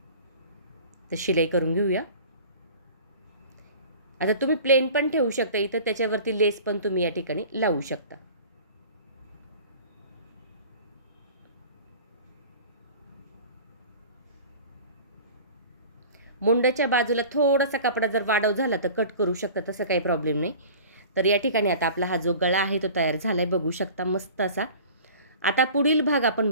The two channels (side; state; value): both; inverted; correlation -0.42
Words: तर शिलाई करून घेऊया. आता तुम्ही प्लेन पण ठेवू शकता इथं, त्याच्यावरती लेस पण तुम्ही या ठिकाणी लावू शकता. मुंड्याच्या बाजूला थोडासा कपडा जर वाढव झाला तर कट करू शकता, तसं काही प्रॉब्लेम नाही. तर या ठिकाणी आता आपला हा जो गळा आहे तो तयार झाला आहे. बघू शकता मस्त असा. आता पुढील भाग आपण